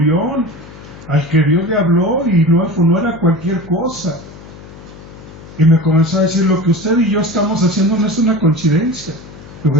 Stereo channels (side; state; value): left; noise; hum, 18 dB below the sound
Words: al que Dios le habló y no era cualquier cosa. Y me comenzó a decir: lo que usted y yo estamos haciendo no es una coincidencia. Digo: